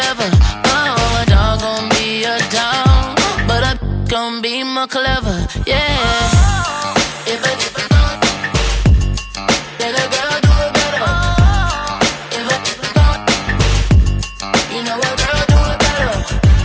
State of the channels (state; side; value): identical; both; correlation 1.00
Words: Oh, a dog gon' be a dog, but a gon' be more clever. Yeah.